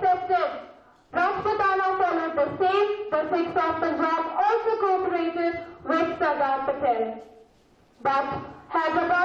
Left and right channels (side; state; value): both; identical; correlation 1.00